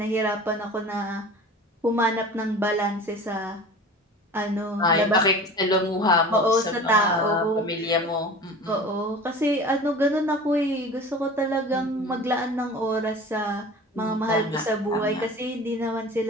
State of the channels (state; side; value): normal; both; correlation 0.39